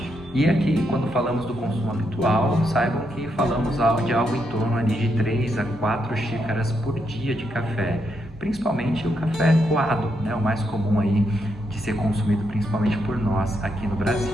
E aqui, quando falamos do consumo habitual, saibam que falamos de algo em torno ali de 3 a 4 xícaras por dia de café, principalmente o café coado, né, o mais comum aí de ser consumido principalmente por nós aqui no Brasil.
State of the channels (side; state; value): both; normal; correlation 0.79